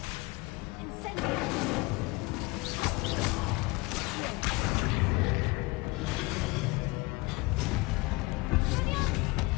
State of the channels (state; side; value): quieter; right; 24.3 dB